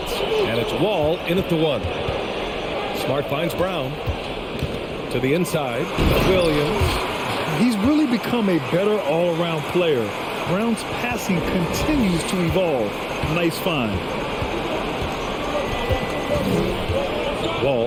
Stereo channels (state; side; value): identical; both; correlation 1.00